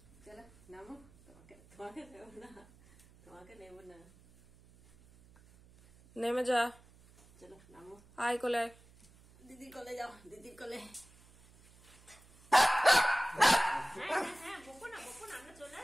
চলো নামো, তোমাকে নেবো না, তোমাকে নেবো না, নেমে যা, চলো নামো, আয় কোলে, দিদির কোলে যাও, দিদির কোলে। হ্যাঁ বকো না, বকো না, আমরা চলে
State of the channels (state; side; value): noise; right; hum, 26 dB below the sound